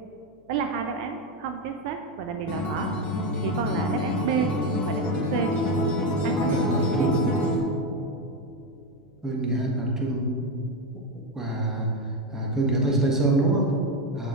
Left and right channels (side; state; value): left; noise; hum, 30 dB below the sound